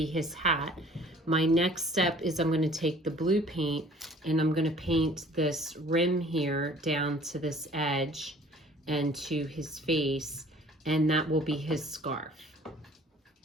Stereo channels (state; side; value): normal; both; correlation 0.52